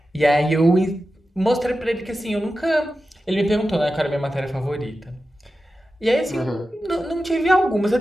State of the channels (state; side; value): normal; both; correlation 0.92